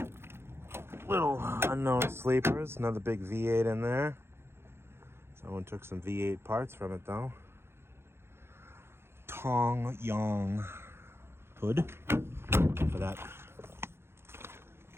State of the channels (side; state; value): left; late; 0.12 ms